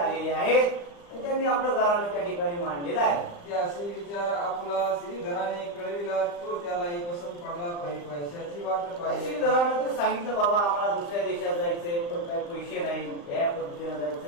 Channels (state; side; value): late; right; 35 ms